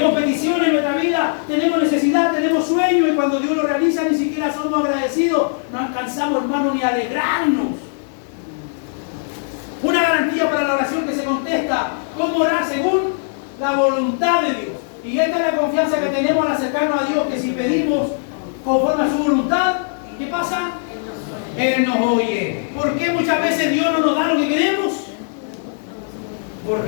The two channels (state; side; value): silent; right; digital silence